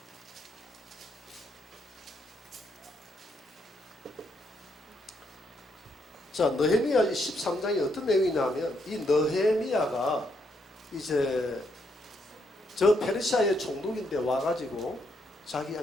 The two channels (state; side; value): normal; both; correlation 0.76